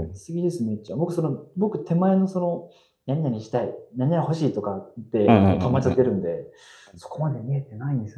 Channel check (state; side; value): identical; both; correlation 1.00